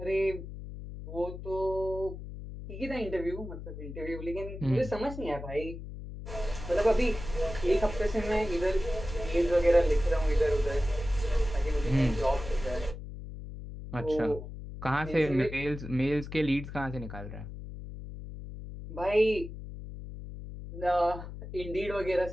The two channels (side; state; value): left; noise; hum, 10 dB below the sound